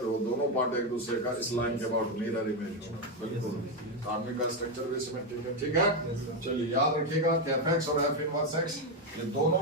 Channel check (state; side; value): normal; both; correlation 0.07